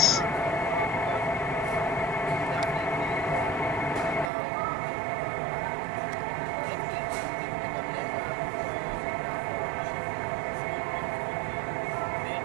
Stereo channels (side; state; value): left; drops out; at 4.3 s